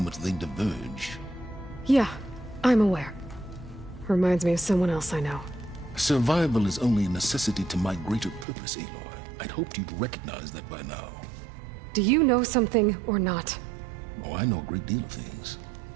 they diverge. Yeah, I'm aware. Reminds me of someone else I know. Survival is only a necessity to my greater purpose, Aloy. I'd hoped you'd recognize that by now. Do you know something or not? Oh, I know a great deal of things.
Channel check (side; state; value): left; drops out; at 8.5 s